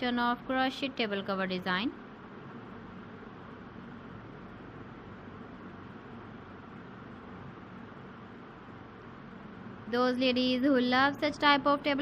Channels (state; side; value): identical; both; correlation 1.00